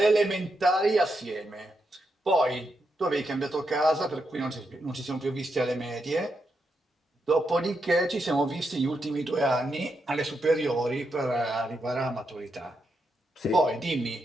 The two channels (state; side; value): normal; both; correlation 0.83